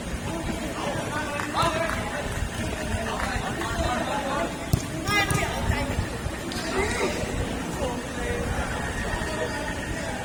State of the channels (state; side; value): identical; both; correlation 1.00